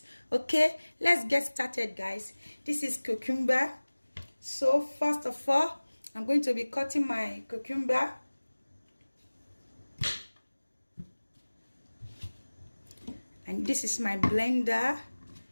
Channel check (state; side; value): inverted; both; correlation -1.00